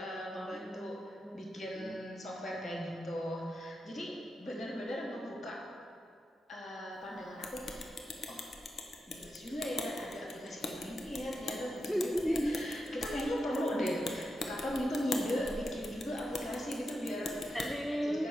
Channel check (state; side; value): normal; both; correlation 0.87